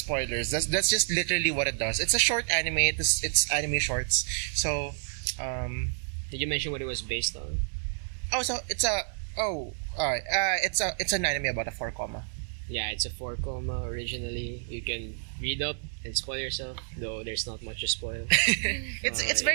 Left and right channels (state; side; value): silent; left; 58 dB below the other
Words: That's just literally what it does. It's a short anime. It's anime shorts. So, Did you mention what it was based on? it's an anime about a 4 comma. Yeah, it's a 4 comma originally. You can read up and spoil yourself, though there's not much to spoil. It's